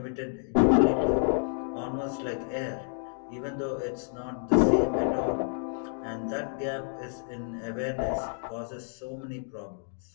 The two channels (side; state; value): right; silent; 58 dB below the other